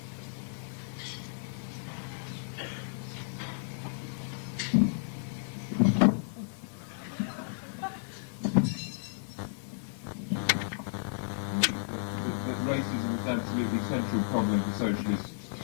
Racism is absolutely central problem for socialists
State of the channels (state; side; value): silent; right; 56 dB below the other